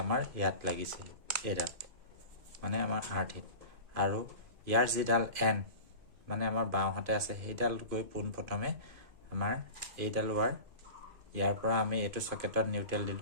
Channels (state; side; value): late; left; 2.5 ms